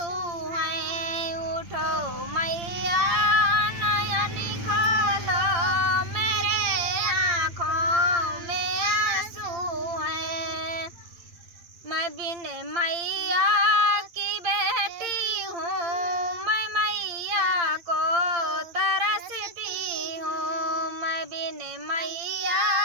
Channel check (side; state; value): left; late; 8.7 ms